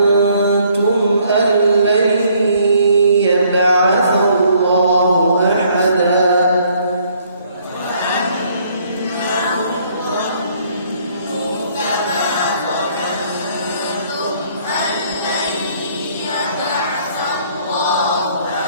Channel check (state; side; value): inverted; both; correlation -0.64